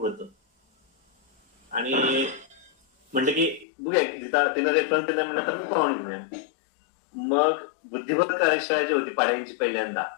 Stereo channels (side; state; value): right; drops out; at 3.7 s